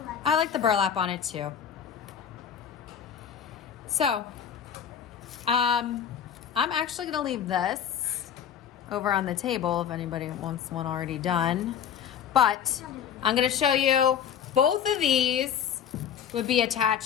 I like the burlap on it too. So, I'm actually gonna leave this over on the table if anybody wants one already done. But I'm gonna show you both of these would be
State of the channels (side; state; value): right; quieter; 8.6 dB